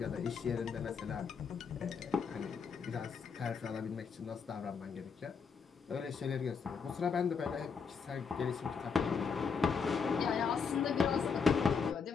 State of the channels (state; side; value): quieter; right; 5.8 dB